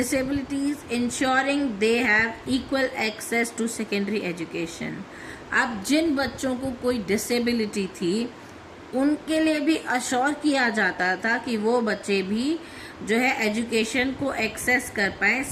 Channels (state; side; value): identical; both; correlation 1.00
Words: ensuring they have equal access to secondary education. अब जिन बच्चों को कोई डिसेबिलिटी थी उनके लिए भी अश्योर किया जाता था कि वो बच्चे भी जो है एजुकेशन को एक्सेस कर पाए,